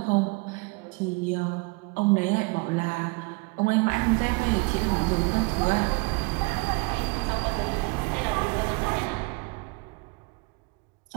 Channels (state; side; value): quieter; left; 29.0 dB